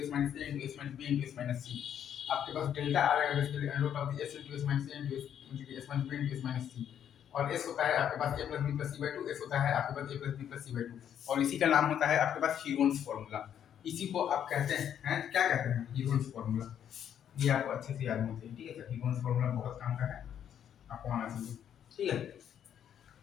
S minus A into S minus B into S minus C. आपके पास डेल्टा आ जाएगा basically under root of the S into S minus A into S minus B into S minus C. और S होता है आपके पास A plus B plus C by 2, S होता है आपके पास A plus B plus C by 2। और इसी का नाम होता है आपके पास हीरोन्स फॉर्मूला। इसी को आप कहते हैं क्या कहते हैं, हीरोन्स फॉर्मूला। ये आपको अच्छे से याद होना चाहिए, ठीक है सर। हीरोन्स फॉर्मूला बहुत काम का है, आपको आना चाहिए, ठीक है।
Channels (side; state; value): right; quieter; 9.4 dB